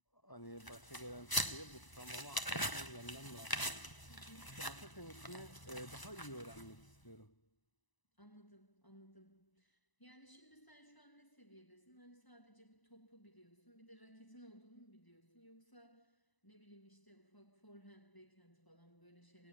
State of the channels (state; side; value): late; right; 1.0 ms